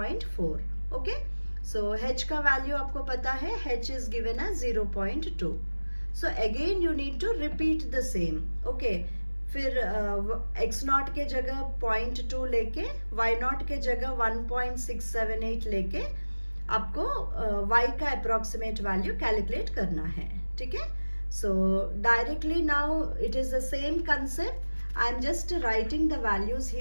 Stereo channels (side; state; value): both; inverted; correlation -1.00